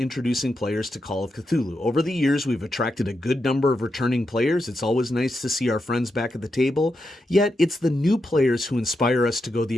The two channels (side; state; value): both; normal; correlation 0.86